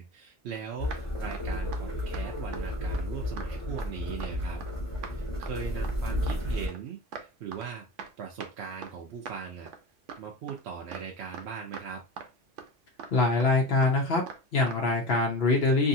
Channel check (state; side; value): normal; both; correlation 0.31